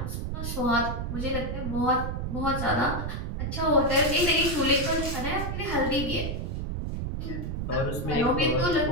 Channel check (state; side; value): noise; right; rumble, 3 dB below the sound